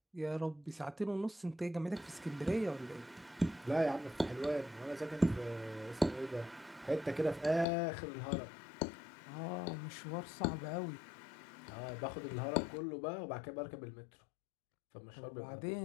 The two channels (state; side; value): drops out; right; at 7.7 s